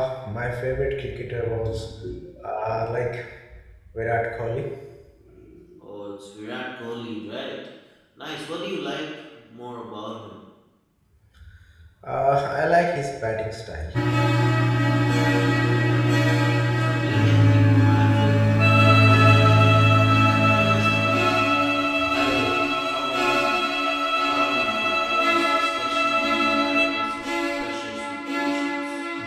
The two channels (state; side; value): identical; both; correlation 1.00